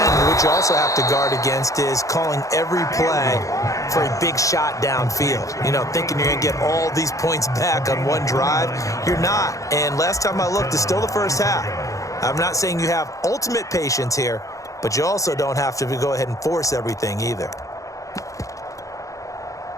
what you also have to guard against is calling every play for a big shot downfield. Thinking you're going to get all these points back on one drive. You're not. And last time I looked, it's still the first half. I'm not saying you have ultimate patience here, but you also don't have to go ahead and force everything either.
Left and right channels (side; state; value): right; late; 0.16 ms